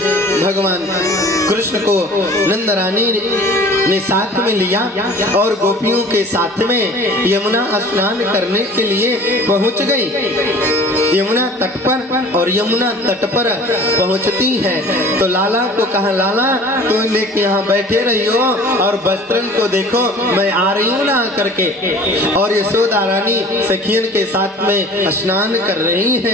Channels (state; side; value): normal; both; correlation 0.45